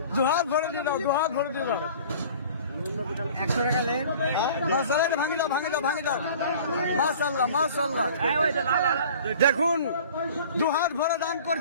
দুহাত ভরে দিয়ে দাও, দুহাত ভরে দিয়ে দাও। 100 টাকা লেন। মাশাআল্লাহ ভাঙি দাও ভাঙি দাও ভাঙি দাও। মাশাআল্লাহ মাশাআল্লাহ দেখুন দুহাত ভরে দান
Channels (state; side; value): inverted; both; correlation -0.46